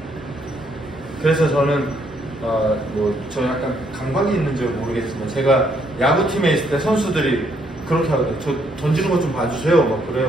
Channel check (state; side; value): normal; both; correlation 0.71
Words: 그래서 저는 저 약간 감각이 있는지 모르겠지만 제가 야구팀에 있을 때 선수들이 그렇게 하거든요. 저 던지는 것 좀 봐주세요. 막